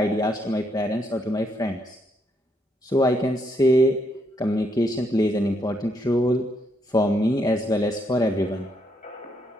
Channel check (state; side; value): normal; both; correlation 0.76